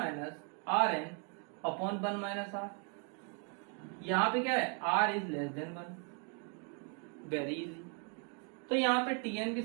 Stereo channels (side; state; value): left; quieter; 37.8 dB